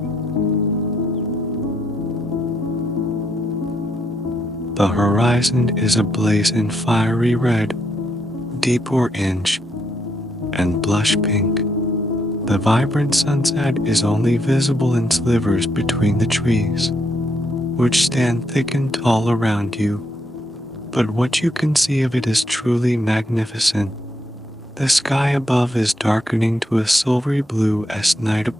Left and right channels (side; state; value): both; normal; correlation 0.76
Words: The horizon is ablaze in fiery red, deep orange, and blush pink. The vibrant sunset is only visible in slivers between the trees, which stand thick and tall around you, but what you can see of it is truly magnificent. The sky above is darkening to a silvery blue as night